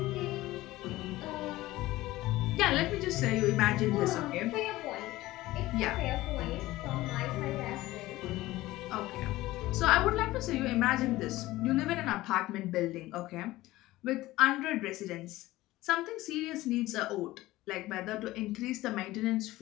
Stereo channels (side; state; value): right; quieter; 17.5 dB